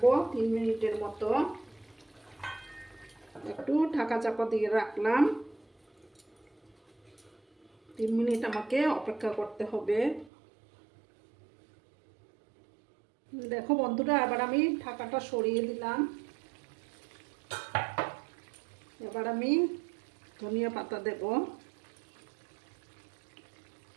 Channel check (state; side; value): drops out; left; at 10.3 s